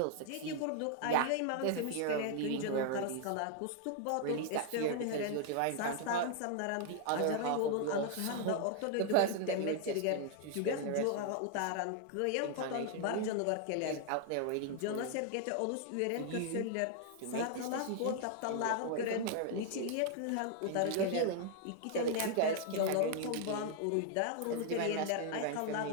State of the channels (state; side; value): different; both; correlation 0.00